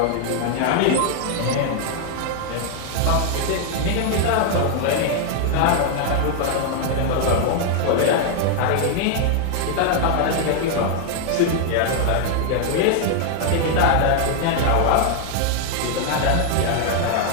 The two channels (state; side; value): different; both; correlation 0.00